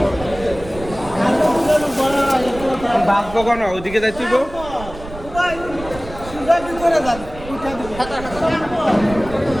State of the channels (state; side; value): noise; right; rumble, 14 dB below the sound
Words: বাদ কখন ওইদিকে যাচ্ছি গো সুন্দর কি করে যান উঠা দিবো